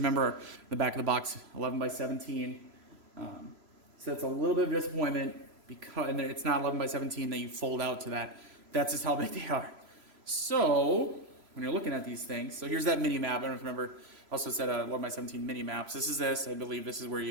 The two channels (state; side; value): late; left; 3.0 ms